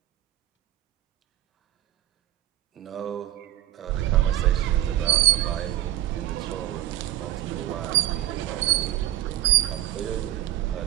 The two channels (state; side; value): quieter; left; 14.1 dB